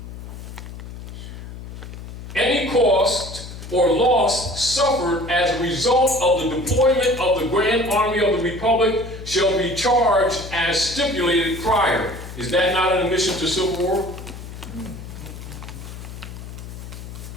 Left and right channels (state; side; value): noise; left; hum, 12 dB below the sound